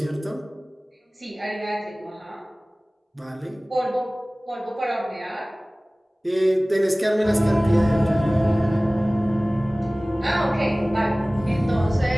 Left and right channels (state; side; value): normal; both; correlation 0.98